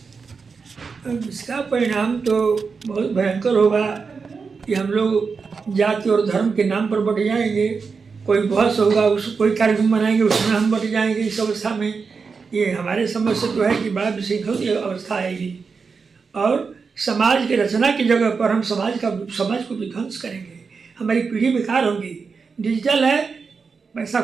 इसका परिणाम तो बहुत भयंकर होगा कि हम लोग जाति और धर्म के नाम पर बट जाएंगे। कोई बहस होगा, उस कोई कार्यक्रम बनाएंगे, उसमें हम बट जाएंगे। इस अवस्था में ये हमारे समझ से तो है कि बड़ा विशृंखल अवस्था आएगी और समाज की रचना की जगह पर हम समाज को विध्वंस करेंगे। हमारी पीढ़ी बेकार होगी। डिजिटल है, पैसा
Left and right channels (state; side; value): quieter; left; 5.1 dB